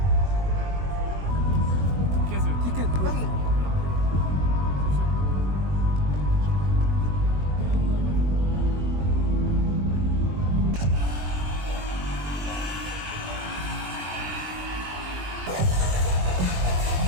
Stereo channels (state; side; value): late; left; 21 ms